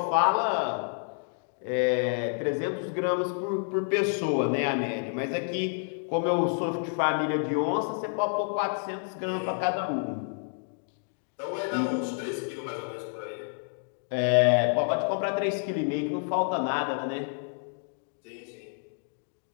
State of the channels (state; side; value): silent; right; 56 dB below the other